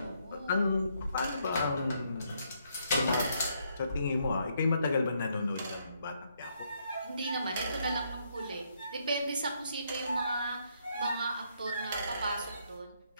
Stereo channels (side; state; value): both; inverted; correlation -0.73